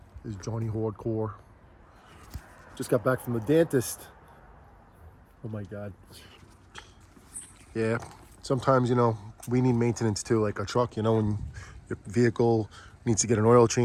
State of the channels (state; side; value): identical; both; correlation 1.00